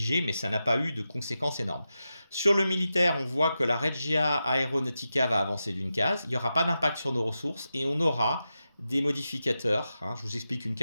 mais ça n'a pas eu de conséquences énormes. Sur le militaire, on voit que la Regia Aeronautica va avancer d'une case, il n'y aura pas d'impact sur nos ressources, et on aura des modificateurs, hein. Je vous explique une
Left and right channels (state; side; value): inverted; both; correlation -0.90